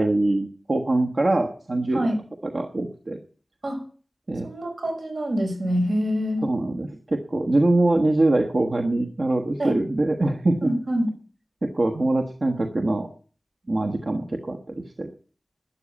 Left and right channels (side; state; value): both; normal; correlation 0.97